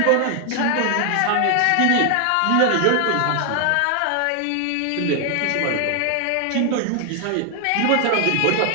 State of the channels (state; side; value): different; both; correlation 0.00